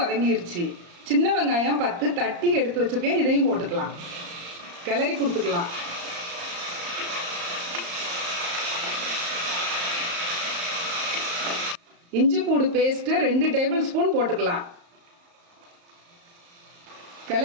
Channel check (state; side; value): late; left; 34 ms